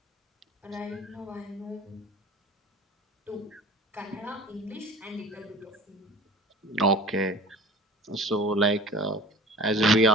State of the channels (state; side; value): normal; both; correlation 0.41